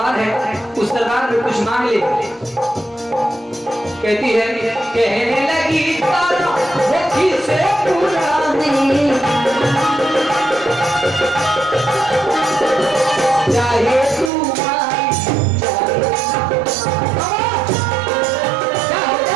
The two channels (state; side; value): drops out; left; at 14.3 s